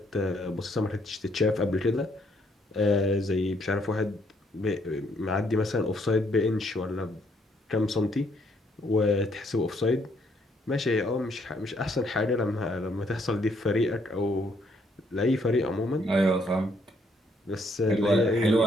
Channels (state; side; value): normal; both; correlation 0.70